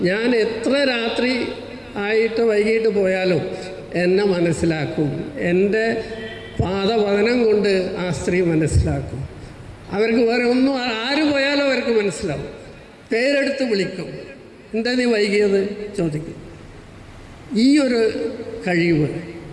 ഞാൻ എത്ര രാത്രി ആയിട്ട് വൈകിട്ട് പോയാലും എന്നെ മനസ്സിലാക്കും. എൻ്റെ പാദപതനം കൊണ്ട് ആ സ്ത്രീ മനസ്സിലാക്കും. അവർക്ക് വേറെ ഒന്നും ആര് പോയാലും അവർക്ക് മനസ്സിലാവും. പേരെടുത്ത് വിളിക്കും. എന്താ നീ വൈകിയത് ചോദിക്കും. ഈ ഒരു കഴിവ്,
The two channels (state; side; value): identical; both; correlation 1.00